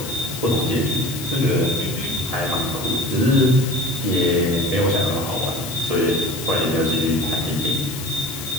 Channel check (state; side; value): noise; left; hiss, 10 dB below the sound